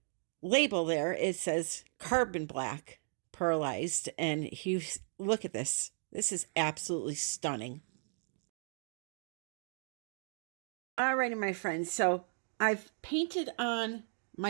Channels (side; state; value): left; silent; 54 dB below the other